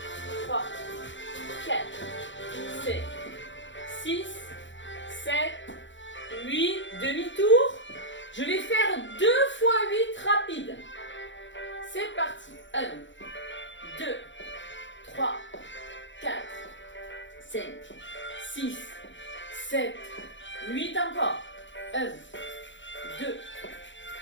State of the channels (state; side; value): late; right; 0.54 ms